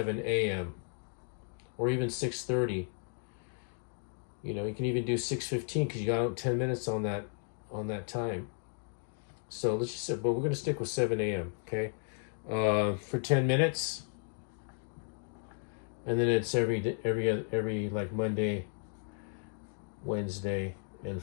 a.m. or even 6:30. You know, you can even do 6:15 because you got 10 minutes on that time. So let's just say, but we're going to stick with 7 a.m. Okay, for 10 minutes, and then it's every like Monday, Wednesday, and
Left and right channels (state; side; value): silent; right; 55 dB below the other